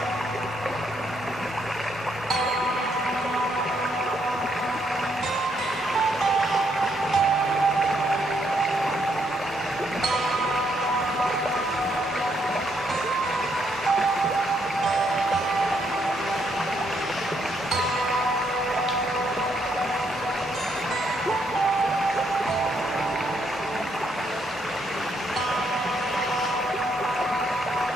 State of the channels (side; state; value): both; normal; correlation 0.74